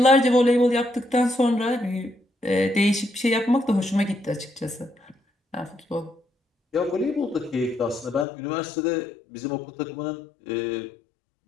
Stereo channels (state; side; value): drops out; right; at 8.2 s